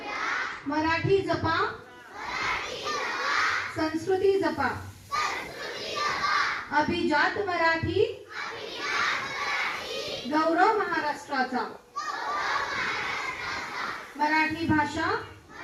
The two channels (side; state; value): both; identical; correlation 1.00